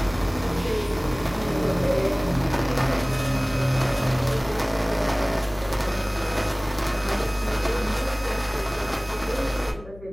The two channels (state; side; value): noise; left; hum, 19 dB below the sound